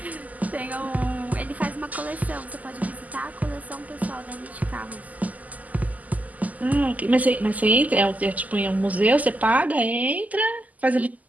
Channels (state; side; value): late; left; 0.078 ms